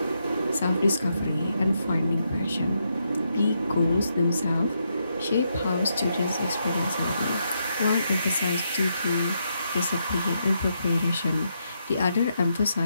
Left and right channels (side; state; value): both; inverted; correlation -0.81